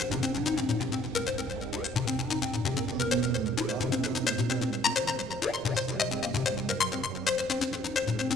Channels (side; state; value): left; noise; rumble, 19 dB below the sound